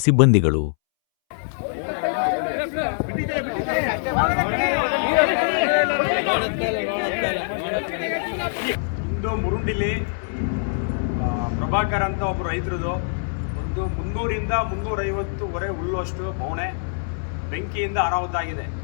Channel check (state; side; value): silent; right; 63 dB below the other